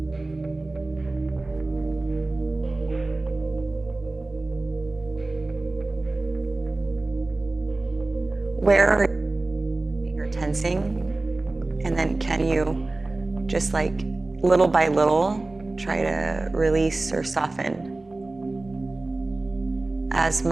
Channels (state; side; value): quieter; left; 3.1 dB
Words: Where are you tensing? And then can you just like little by little try to release or soften as